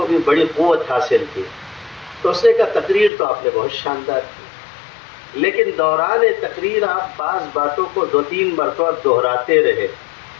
بھی بڑی قوت حاصل تھی. تو اس نے کہا تقریر تو آپ نے بہت شاندار کی، لیکن دوران تقریر آپ بعض باتوں کو 2-3 مرتبہ دہراتے رہے،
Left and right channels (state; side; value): drops out; right; at 3.1 s